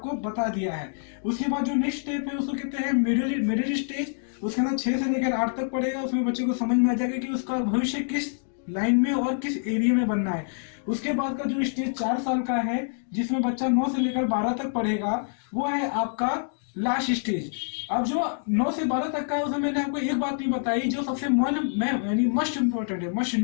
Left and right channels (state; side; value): silent; right; digital silence